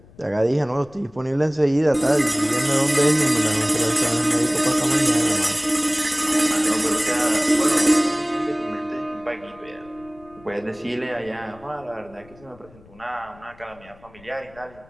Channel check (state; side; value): noise; left; rumble, 25 dB below the sound